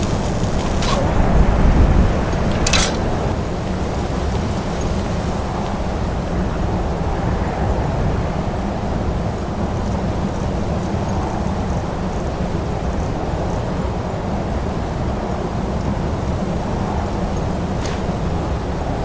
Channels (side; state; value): both; identical; correlation 1.00